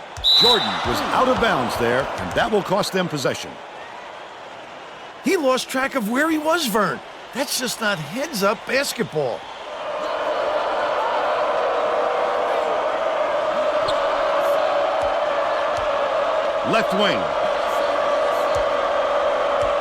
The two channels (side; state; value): both; identical; correlation 1.00